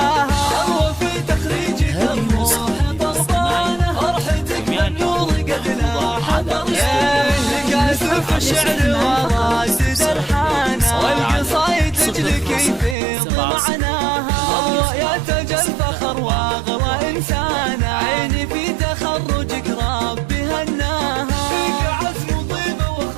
تروى في تخريجك الروح ضربانة، فرحتك بالنور قد لاح درجانة. قاسف الشعر وراسد الحانة، والقصايد تجلك يفيض معناها. الله يا تاج الفخر واغلى انسانة، عيني في تخرجك ربي هناها. فيك عزم وطيبة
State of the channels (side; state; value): left; drops out; at 13.0 s